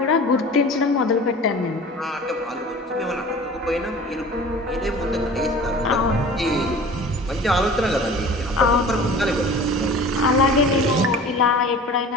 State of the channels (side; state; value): both; normal; correlation 0.41